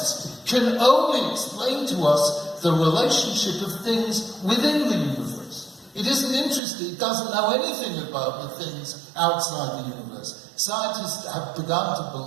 can only explain to us the relationship of things within the universe. It isn't interested, it doesn't know anything about the things outside the universe. Scientists have begun to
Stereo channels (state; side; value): drops out; left; at 6.6 s